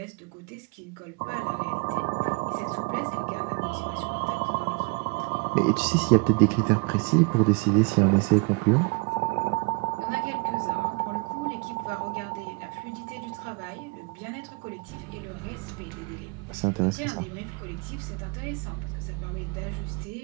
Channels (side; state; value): left; quieter; 30.7 dB